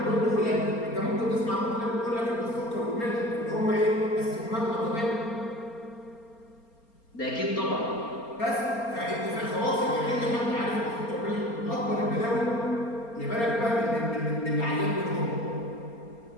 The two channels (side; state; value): right; late; 4.3 ms